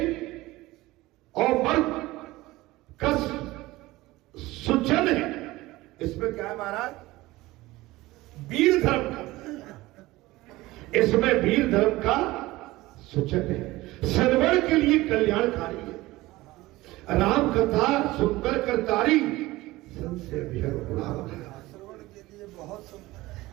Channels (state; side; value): quieter; left; 18.9 dB